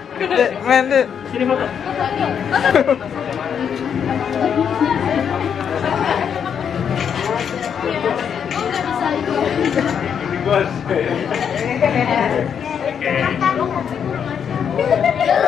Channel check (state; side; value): quieter; right; 7.7 dB